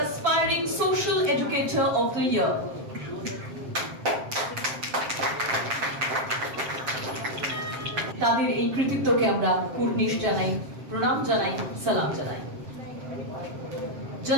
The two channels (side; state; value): left; late; 7.5 ms